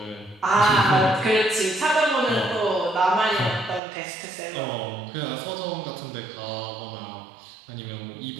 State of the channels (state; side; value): drops out; left; at 3.8 s